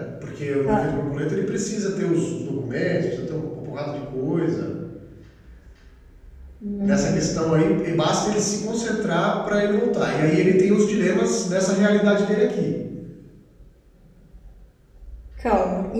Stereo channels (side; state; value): both; identical; correlation 1.00